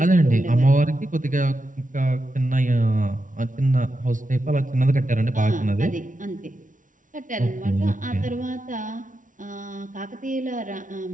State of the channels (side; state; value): left; late; 0.38 ms